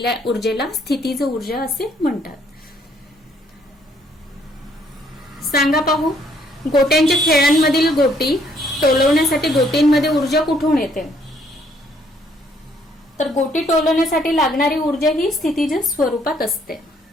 ऊर्जेला स्थितीज ऊर्जा असे म्हणतात. सांगा पाहू. गोट्यांच्या खेळांमधील गोटी टोलवण्यासाठी गोटींमध्ये ऊर्जा कुठून येते. तर गोटी टोलवण्यासाठी लागणारी ऊर्जा ही स्थितीज स्वरूपात असते.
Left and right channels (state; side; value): normal; both; correlation 0.66